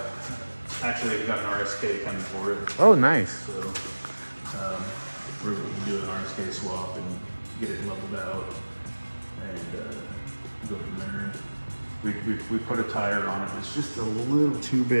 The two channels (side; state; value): both; inverted; correlation -1.00